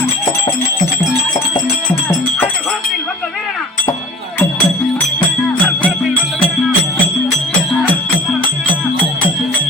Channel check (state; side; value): normal; both; correlation 0.42